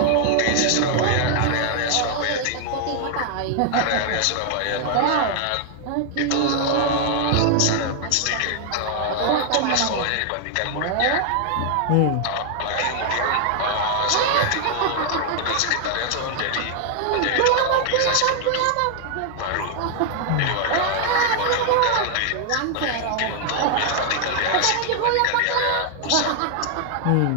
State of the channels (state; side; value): different; both; correlation 0.00